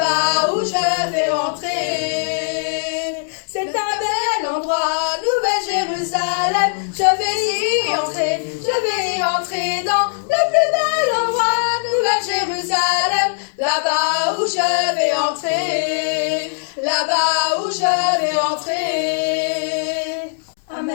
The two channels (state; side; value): silent; right; digital silence